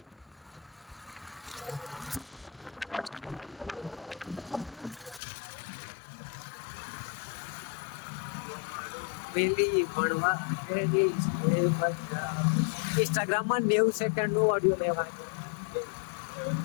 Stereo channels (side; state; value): right; drops out; at 5.2 s